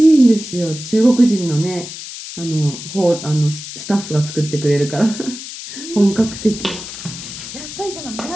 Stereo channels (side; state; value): left; noise; hiss, 11 dB below the sound